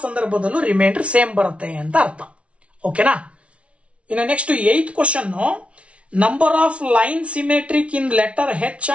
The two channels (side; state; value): left; late; 0.062 ms